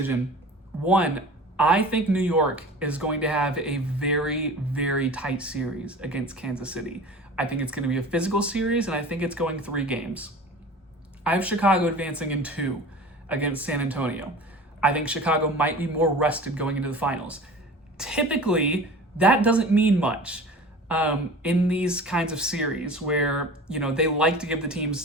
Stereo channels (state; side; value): normal; both; correlation 0.39